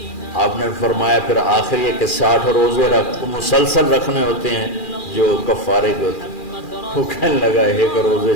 آپ نے فرمایا پھر آخر یہ کہ 60 روزے مسلسل رکھنے ہوتے ہیں جو کفارے کے ہوتے ہیں. وہ کہنے لگا ایک روزے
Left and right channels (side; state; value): right; late; 2.4 ms